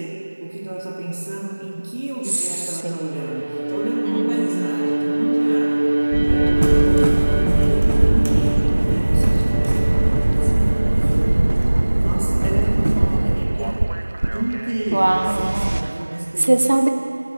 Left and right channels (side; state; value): both; inverted; correlation -1.00